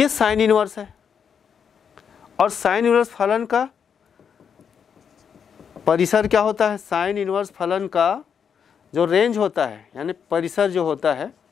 साइन इनवर्स है और साइन इनवर्स फलन का परिसर क्या होता है, साइन इनवर्स फलन का जो रेंज होता है यानी परिसर जो होता है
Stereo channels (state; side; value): quieter; right; 7.2 dB